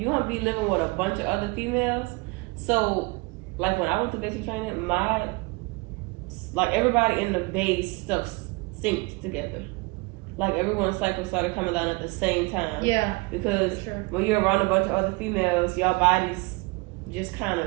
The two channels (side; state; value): left; quieter; 26.5 dB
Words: gonna be living with a bunch of other females. So like when I went through basic training, everybody in the base stuff synced together. Like everyone's cycle started coming down at the same time. Yeah. Because when you're around a bunch of other females, your bodies just kind of